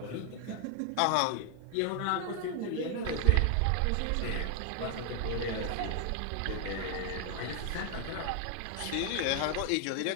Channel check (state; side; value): different; both; correlation 0.00